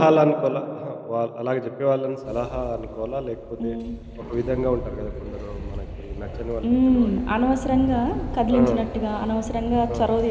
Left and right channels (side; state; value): both; identical; correlation 1.00